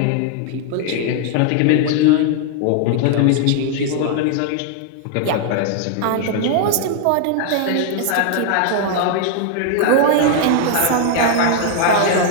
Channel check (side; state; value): both; different; correlation 0.00